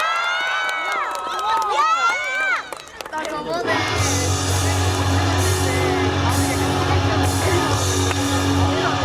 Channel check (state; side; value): identical; both; correlation 1.00